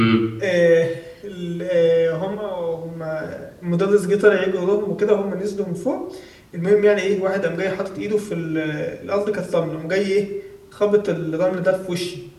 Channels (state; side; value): identical; both; correlation 1.00